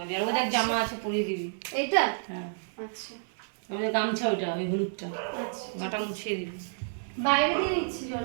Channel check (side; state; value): left; silent; digital silence